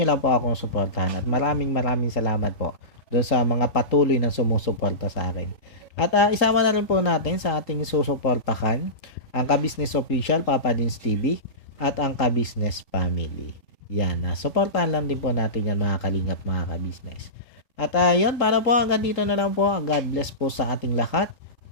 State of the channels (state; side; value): late; right; 3.8 ms